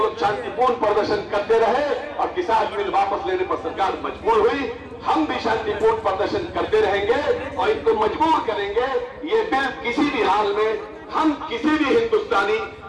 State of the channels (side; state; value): both; identical; correlation 1.00